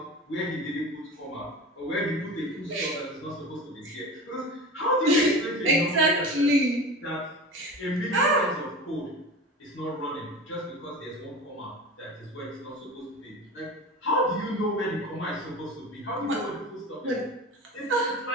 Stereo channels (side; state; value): both; normal; correlation 0.31